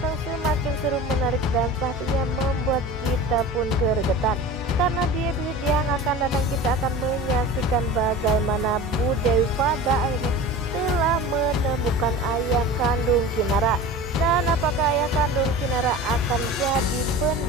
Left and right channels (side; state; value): both; normal; correlation 0.35